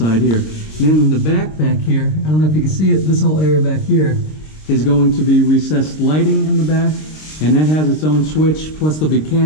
here. And then in the back here, I don't know if you can see it, this whole area back here is going to be recessed lighting in the back. And that has its own switch, plus there'll be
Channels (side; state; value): right; late; 26 ms